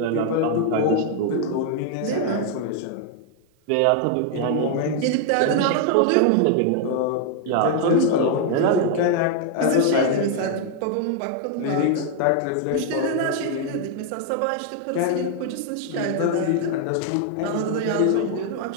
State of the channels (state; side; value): different; both; correlation 0.00